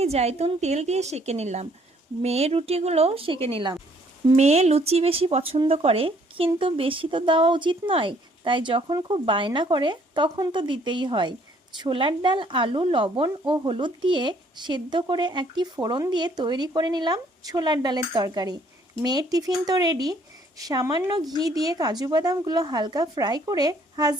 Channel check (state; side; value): normal; both; correlation 0.63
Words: জাইতুন তেল দিয়ে সেঁকে নিলাম। মেয়ের রুটিগুলোও সেঁকে নিলাম। মেয়ে লুচি বেশি পছন্দ করে, কিন্তু বেশি তো দেওয়া উচিত নয়, তাই যখন খুব বায়না করে তখন তো দিতেই হয়। ছোলার ডাল, আলু, লবণ ও হলুদ দিয়ে সেদ্ধ করে একটি ফোড়ন দিয়ে তৈরি করে নিলাম ছোলার ডালের তরকারি। মেয়ের টিফিন তো রেডি। সামান্য ঘি দিয়ে কাজু বাদামগুলো হালকা ফ্রাই করে